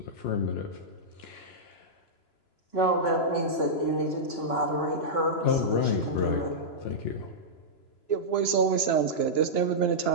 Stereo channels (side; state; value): right; late; 2.9 ms